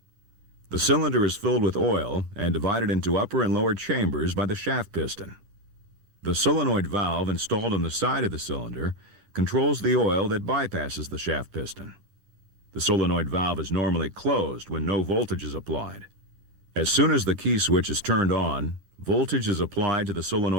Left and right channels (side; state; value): left; late; 11 ms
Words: The cylinder is filled with oil and divided into upper and lower chambers by the shaft piston. The solenoid valve installed on the side of the cylinder controls the oil that bypasses the shaft piston. The solenoid valve is normally closed when no voltage is applied. As soon as the key switch is turned on, voltage is applied to the